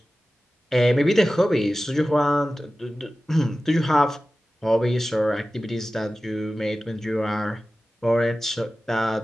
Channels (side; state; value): both; normal; correlation 0.95